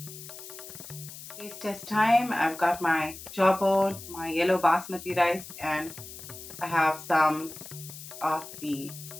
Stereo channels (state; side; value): noise; left; hiss, 13 dB below the sound